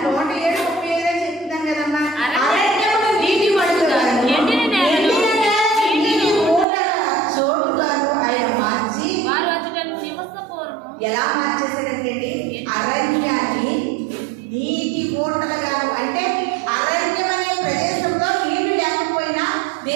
107:35 చెప్తున్నాను కదమ్మా. అరణ్యమును నీటి మడుగుగా ఎండిన నేలను చోటుగాను ఆయన మార్చి వారు అచ్చట నివసపూర్వము ఎలా మార్చేశారంటే అరణ్యాన్ని నీటి ఊటలుగాను, అంటే అరణ్యం అనే ప్రదేశంలో నీళ్లు లేకపోయినా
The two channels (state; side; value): drops out; left; at 6.7 s